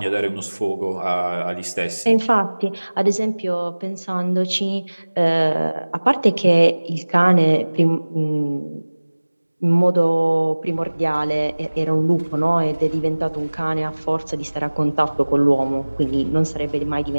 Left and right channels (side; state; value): both; inverted; correlation -1.00